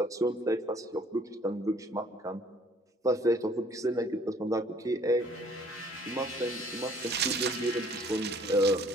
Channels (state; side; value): normal; both; correlation 0.58